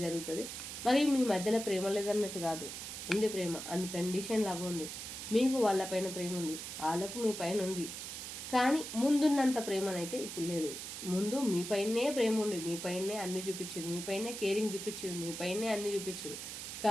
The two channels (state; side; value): noise; right; hiss, 8 dB below the sound